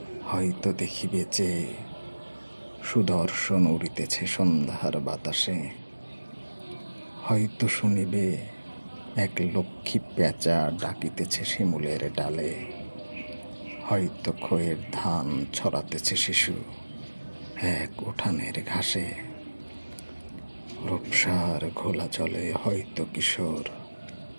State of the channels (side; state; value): both; inverted; correlation -1.00